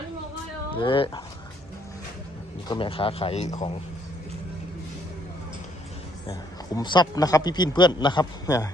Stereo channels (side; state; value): both; normal; correlation 0.68